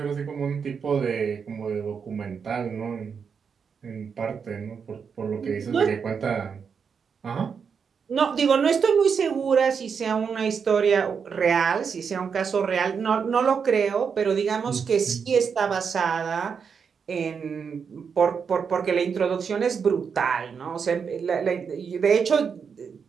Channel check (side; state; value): left; quieter; 6.3 dB